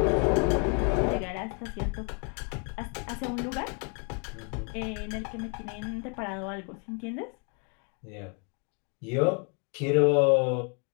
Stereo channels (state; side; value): quieter; right; 37.6 dB